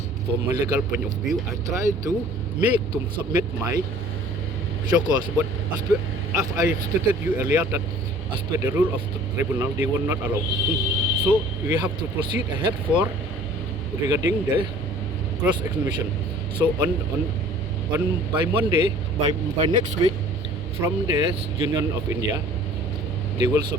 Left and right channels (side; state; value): both; normal; correlation 0.50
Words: from my legal point of view, I try to submit my show cause. But as I stated you earlier that as per the rule of the tribunal, they will not allow. So we have to proceed ahead for regarding the cross examination. So on by Monday, by next week, from the Union of India, they will